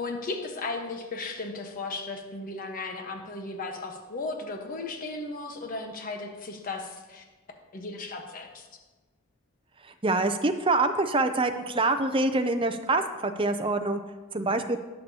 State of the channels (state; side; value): normal; both; correlation 0.18